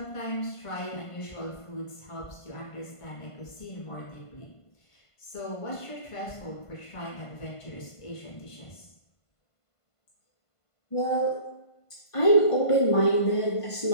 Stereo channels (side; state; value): right; late; 1.5 ms